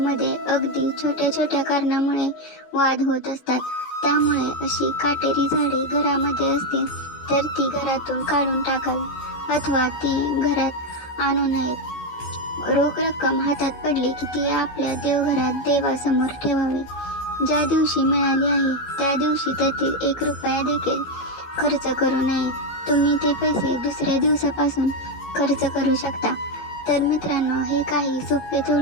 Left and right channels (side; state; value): right; late; 15 ms